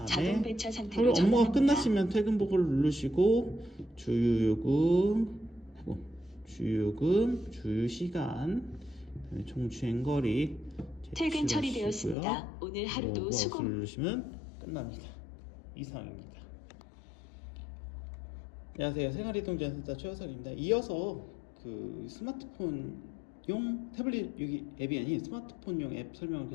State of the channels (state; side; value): drops out; right; at 12.2 s